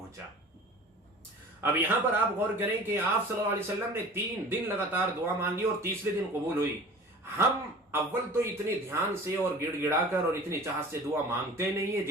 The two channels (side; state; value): both; normal; correlation 0.42